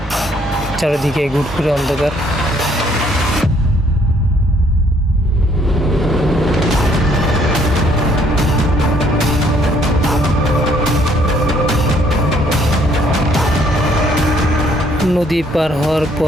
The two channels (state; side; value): normal; both; correlation 0.65